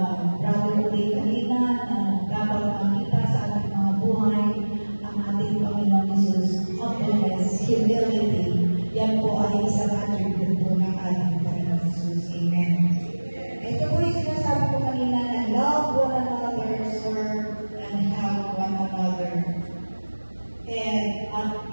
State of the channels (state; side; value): inverted; both; correlation -1.00